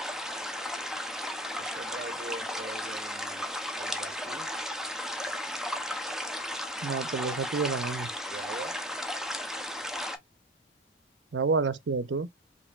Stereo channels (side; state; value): both; normal; correlation 0.36